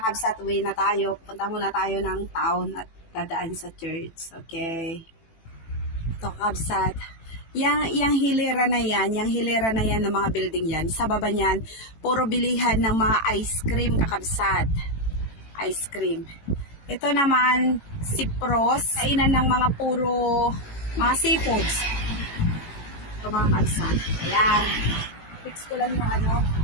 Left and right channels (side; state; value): right; late; 18 ms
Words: kabsat, uwi na tayo. Punta muna tayo ng town at dadaan sa church. Okay. Ito kabsat. Yang hilera na yan ng mga building yan. Sa baba niyan, puro bilihan ng mga ice cream kakabsat. Ice cream. Ito naman, Cyprus. Kainan ng mga puro mga seafoods. Ito mga kabsat. Ayan. Fix ko lang